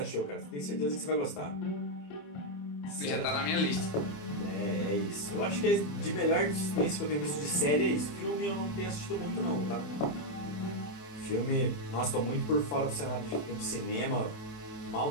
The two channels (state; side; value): late; right; 27 ms